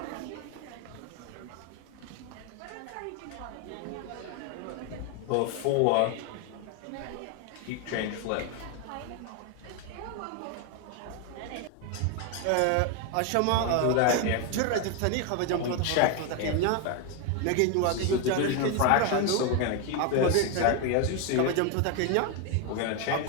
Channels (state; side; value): different; both; correlation 0.01